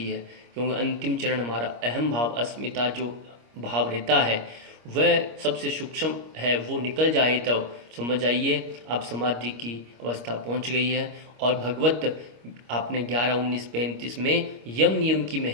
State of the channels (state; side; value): late; left; 25 ms